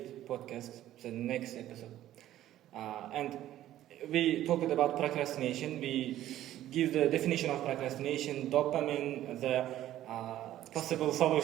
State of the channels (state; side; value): quieter; left; 13.2 dB